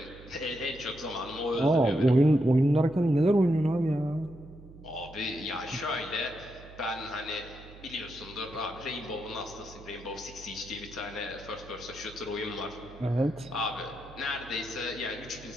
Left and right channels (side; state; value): right; noise; hum, 18 dB below the sound